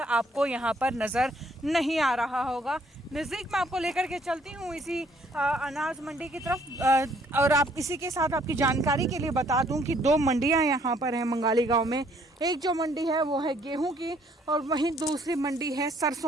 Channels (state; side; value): normal; both; correlation 0.64